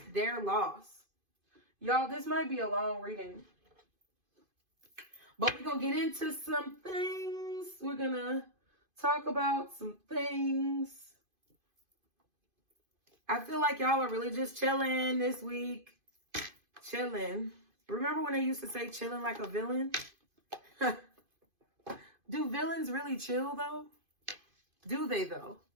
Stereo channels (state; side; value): late; left; 2.5 ms